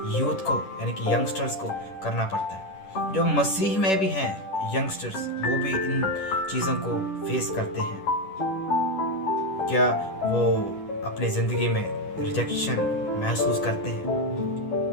यूथ को यानी कि यंगस्टर्स को करना पड़ता है। जो मसीह में भी हैं यंगस्टर्स, वो भी इन चीज़ों को फेस करते हैं। क्या वो अपनी ज़िंदगी में रिजेक्शन महसूस करते हैं?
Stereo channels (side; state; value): right; late; 10 ms